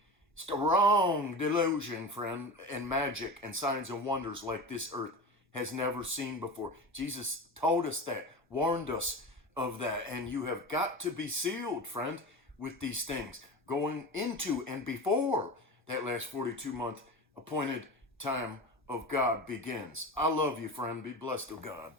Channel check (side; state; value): both; normal; correlation 0.28